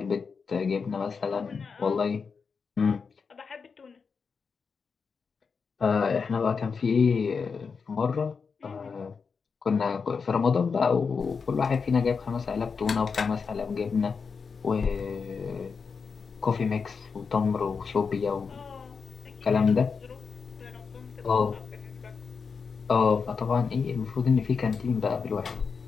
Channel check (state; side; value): quieter; right; 5.4 dB